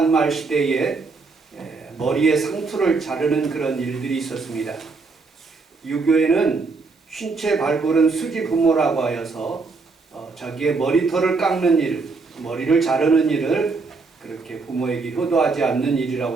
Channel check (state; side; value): quieter; left; 4.1 dB